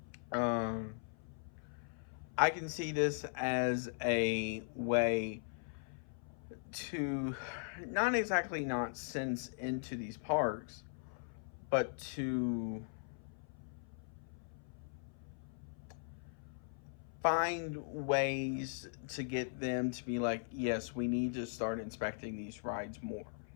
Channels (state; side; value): silent; right; 52 dB below the other